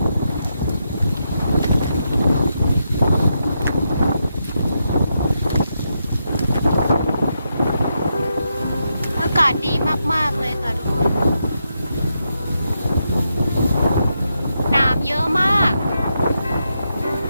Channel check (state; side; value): inverted; both; correlation -0.83